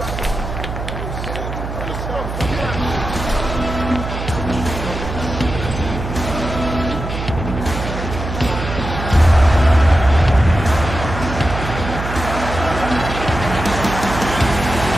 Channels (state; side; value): noise; right; hum, 6 dB below the sound